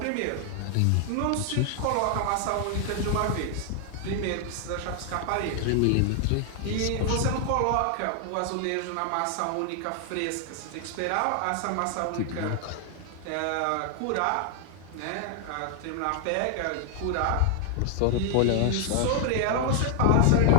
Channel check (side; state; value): both; different; correlation 0.00